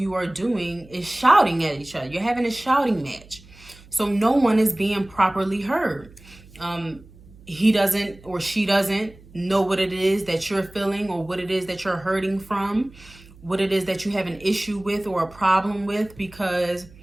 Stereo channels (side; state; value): right; noise; hum, 23 dB below the sound